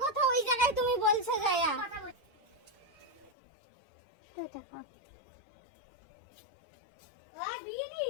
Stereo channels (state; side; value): drops out; right; at 3.3 s